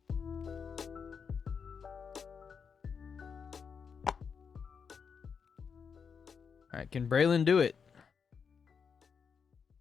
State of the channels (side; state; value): right; quieter; 6.2 dB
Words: All right, can Braylon do it?